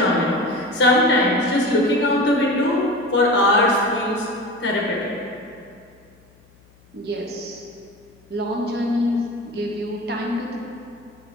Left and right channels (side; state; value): left; noise; hum, 30 dB below the sound